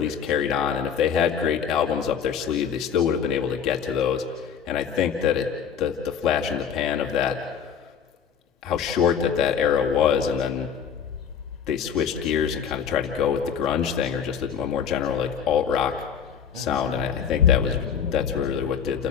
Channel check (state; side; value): quieter; right; 7.4 dB